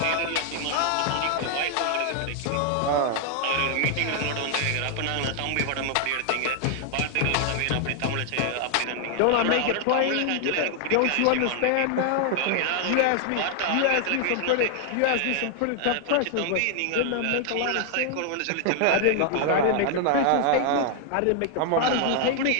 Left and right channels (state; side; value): different; both; correlation 0.00